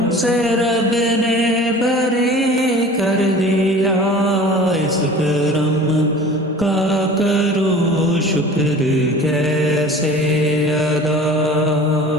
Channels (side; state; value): both; normal; correlation 0.42